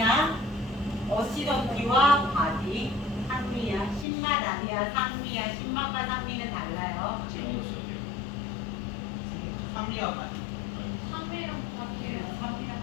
어시더티와 바디. 산미야. 신맛 아니야. 산미야. 신맛과 산미는 달라요. 산미와 맛. 삶이랑 바디랑.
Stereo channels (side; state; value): right; drops out; at 4.0 s